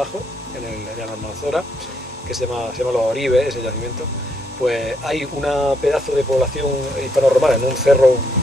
en la Almanzora, que se llama Los Oribes, ese yacimiento, pues hay una pedazo de población hispano-romana en un cerro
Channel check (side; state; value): both; normal; correlation 0.75